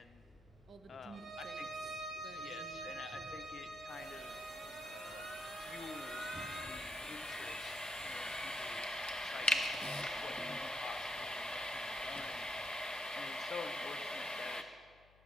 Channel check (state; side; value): noise; left; hum, 25 dB below the sound